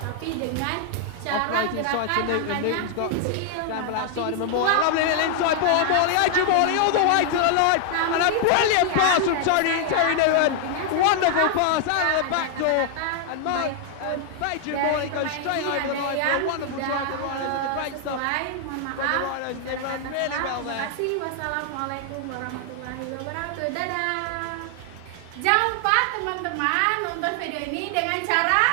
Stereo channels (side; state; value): both; different; correlation 0.00